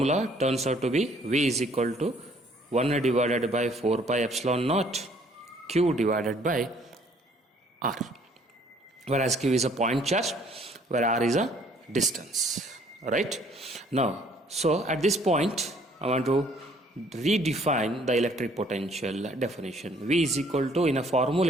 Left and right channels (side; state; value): both; normal; correlation 0.60